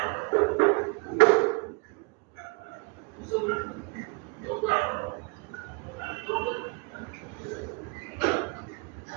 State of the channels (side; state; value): left; quieter; 30.7 dB